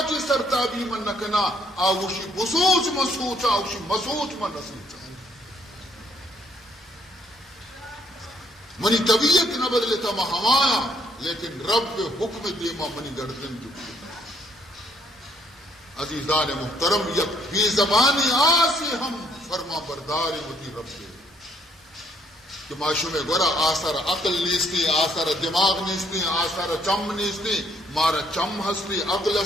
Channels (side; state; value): both; normal; correlation 0.68